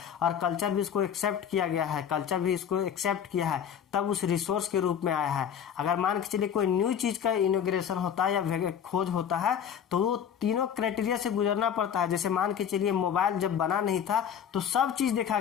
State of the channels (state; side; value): quieter; right; 8.5 dB